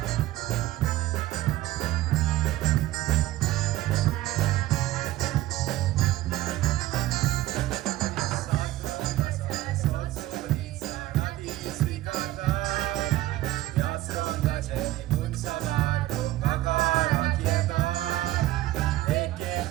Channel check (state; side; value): quieter; left; 15.6 dB